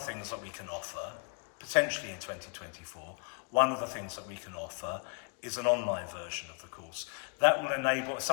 that we can offer, potentially in 2024, one of the things that we can offer is an online version of the course. That will enable,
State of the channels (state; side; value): quieter; right; 35.0 dB